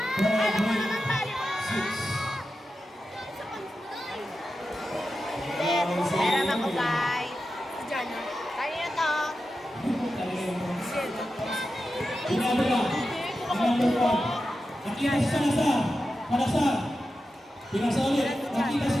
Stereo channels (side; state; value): both; normal; correlation 0.91